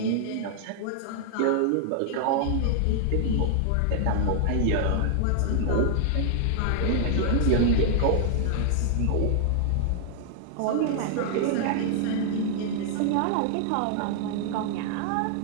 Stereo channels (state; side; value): different; both; correlation 0.00